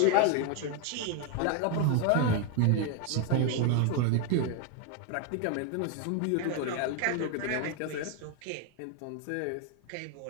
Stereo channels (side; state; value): both; different; correlation 0.01